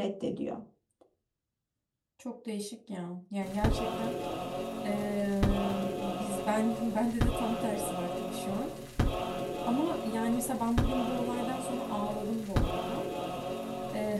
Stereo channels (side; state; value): both; identical; correlation 1.00